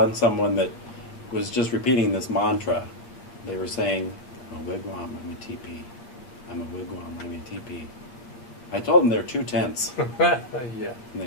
someone that was just repeating this mantra. They were saying, I'm a wigwam, I'm a teepee. I'm a wigwam, I'm a teepee. I told them they're too tense, Yeah. and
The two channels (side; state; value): right; late; 8.2 ms